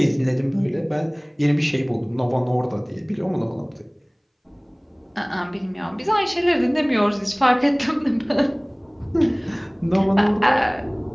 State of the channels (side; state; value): both; identical; correlation 1.00